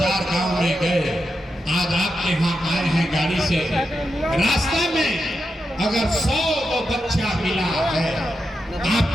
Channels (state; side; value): normal; both; correlation 0.87